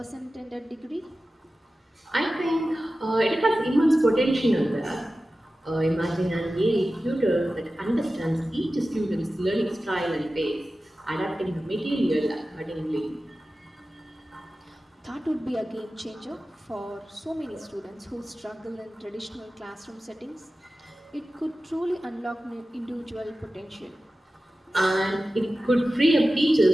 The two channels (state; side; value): normal; both; correlation 0.95